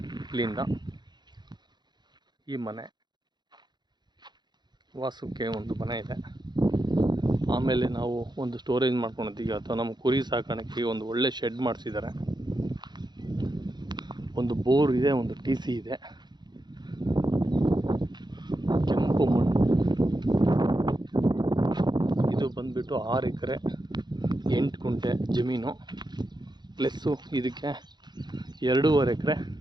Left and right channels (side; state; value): left; late; 0.21 ms